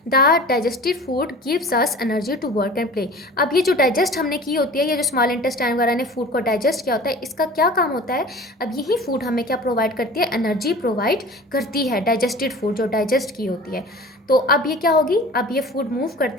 the digestive food gives us energy to work and play. अब ये जो डाइजेस्ट हमने की होती है, ये जो स्मॉल इंटेस्टाइन वगैरह ने फूड को डाइजेस्ट किया होता है, इसका क्या काम होता है, अब यही फूड हमें क्या प्रोवाइड करती है, एनर्जी प्रोवाइड करती है, डाइजेस्टेड फूड जो डाइजेस्ट की होती है। तो अब ये क्या होगी, अब ये फूड मूव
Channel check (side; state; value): both; normal; correlation 0.41